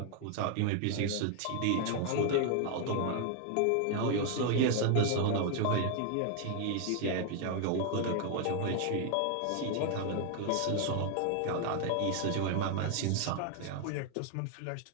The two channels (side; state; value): both; different; correlation 0.00